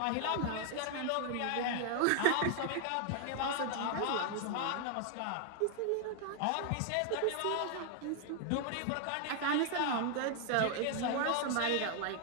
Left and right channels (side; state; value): both; different; correlation 0.00